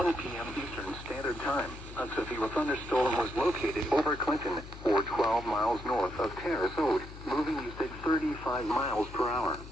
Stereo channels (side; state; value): left; noise; hum, 14 dB below the sound